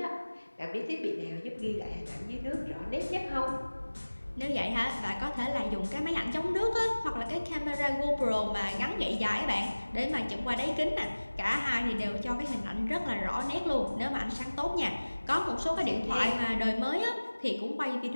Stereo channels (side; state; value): both; inverted; correlation -1.00